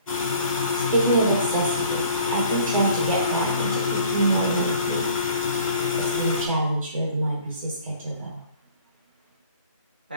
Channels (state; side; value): inverted; both; correlation -0.52